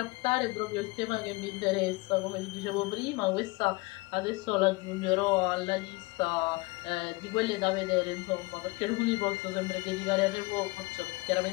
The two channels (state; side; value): quieter; right; 24.0 dB